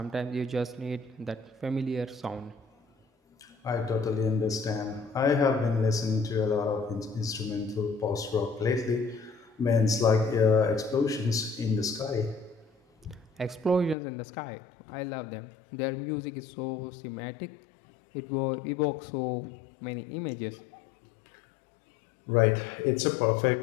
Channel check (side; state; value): right; drops out; at 14.0 s